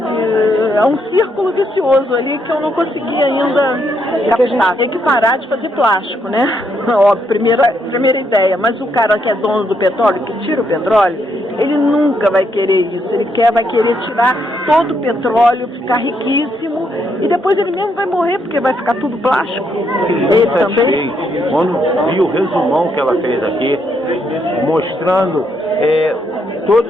círculo vicioso ali que eu não consegui ainda captar. Tem que parar de fazer plástico, né? Óbvio, primeira ideia. Mas o cara que é dono do petróleo, que tira o petróleo, ele nunca vai querer isso. Ele vai querer tirar todo o petróleo, ficar riquíssimo, e depois ele mesmo vai morrer, porque vai ficar tudo plástico. Ele também. Quando vi o resumão que ela fez aqui, mostrando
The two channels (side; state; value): both; normal; correlation 0.76